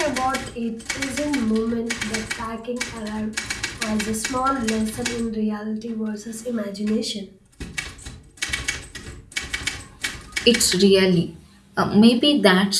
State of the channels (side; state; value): both; identical; correlation 1.00